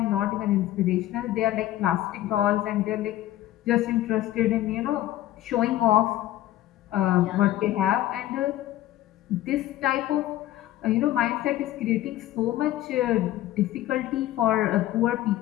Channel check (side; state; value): right; quieter; 14.2 dB